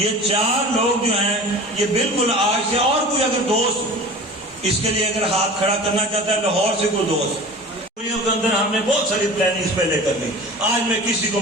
4 لوگ جو ہیں یہ بالکل آج سے, اور کوئی اگر دوست اس کے لیے اگر ہاتھ کھڑا کرنا چاہتا ہے, لاہور سے کوئی دوست, کے اندر ہم نے بہت ساری پلاننگ پہلے کر لی. آج میں کسی کو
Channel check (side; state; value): both; normal; correlation 0.38